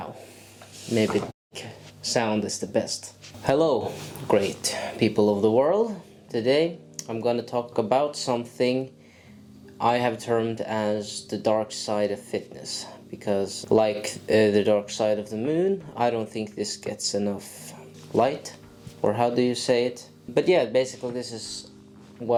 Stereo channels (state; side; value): identical; both; correlation 1.00